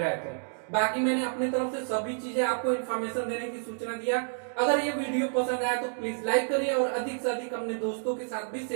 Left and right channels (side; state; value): left; silent; digital silence